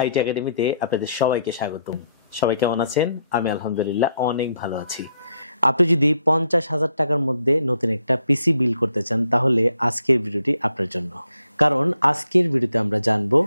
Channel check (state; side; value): inverted; both; correlation -0.74